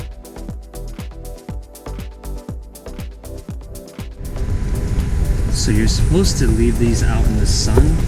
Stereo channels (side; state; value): both; identical; correlation 1.00